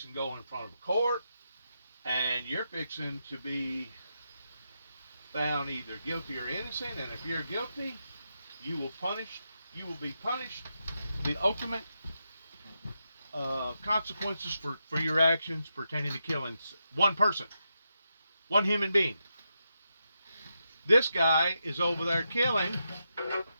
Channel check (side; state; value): both; inverted; correlation -0.85